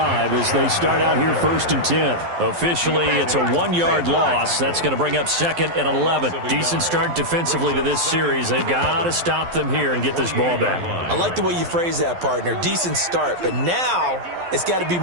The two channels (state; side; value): late; left; 12 ms